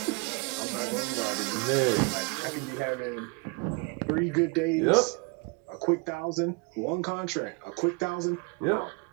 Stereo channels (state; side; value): quieter; left; 29.9 dB